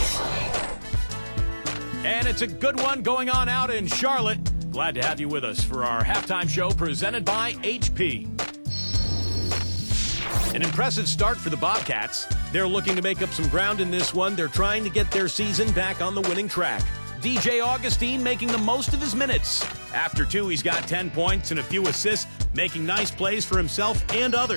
And it's a good one going on out in Charlotte. Glad to have you with us for our halftime show presented by HP. An impressive start for the Bobcats. They're looking to make up some ground in this one. They're trying to get their season back on the winning track. DJ Augustine making the most of his minutes. After 2, he's got 10 points and a few assists, making nice plays for himself and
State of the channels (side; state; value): both; inverted; correlation -1.00